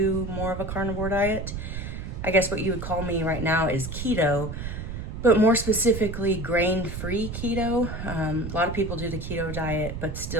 more of a carnivore diet. I guess what you would call me right now is keto, but more specifically grain-free keto. A lot of people do the keto diet but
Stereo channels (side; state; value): right; noise; rumble, 6 dB below the sound